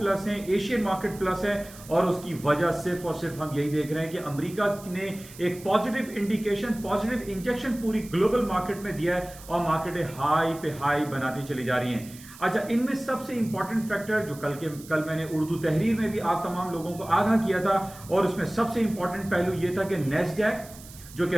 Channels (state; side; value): noise; right; hiss, 18 dB below the sound